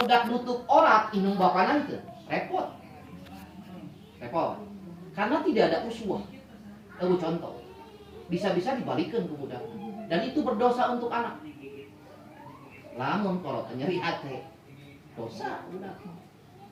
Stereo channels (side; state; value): both; identical; correlation 1.00